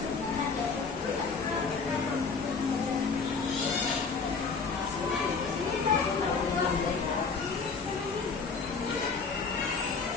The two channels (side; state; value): right; quieter; 4.9 dB